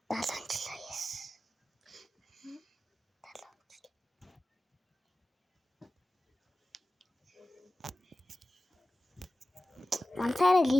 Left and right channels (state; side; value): normal; both; correlation 0.95